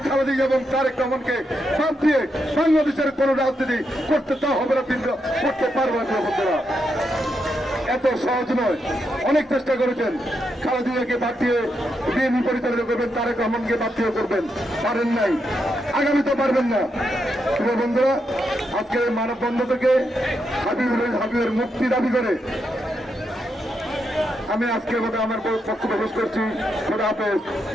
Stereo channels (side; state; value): both; normal; correlation 0.82